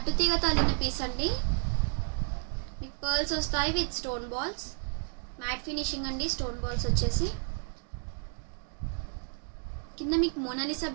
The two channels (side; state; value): left; silent; 57 dB below the other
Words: అల్లిన పీస్ అండి. మీకు పర్ల్స్ వస్తాయి with stone balls. Matte finishing అండి. స్టోన్ బాల్స్ వచ్చేసి కింద మీకు మోనాలిసా